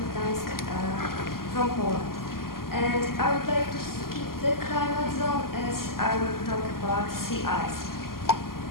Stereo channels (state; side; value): late; right; 0.92 ms